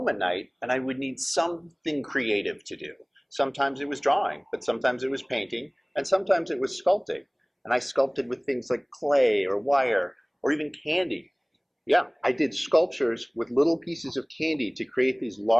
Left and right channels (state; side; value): identical; both; correlation 1.00